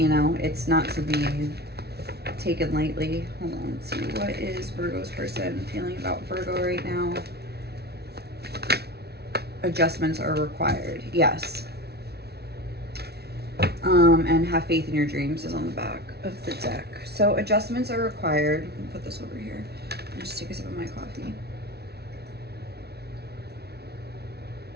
know. It's not to be taken lightly. Hold on, let's see. What is Virgo's person feeling about Virgo right now? Adjustments are required. Yes. And have faith in your dreams is on the back of the deck. So adjustments are required. Let me put this over here and just take a sip of my coffee.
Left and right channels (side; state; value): left; late; 0.48 ms